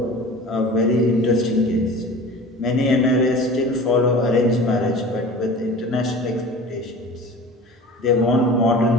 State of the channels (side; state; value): both; normal; correlation 0.39